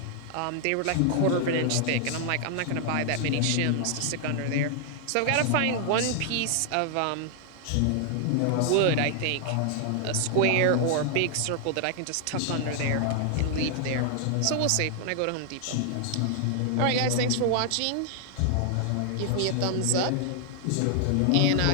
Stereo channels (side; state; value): both; different; correlation 0.00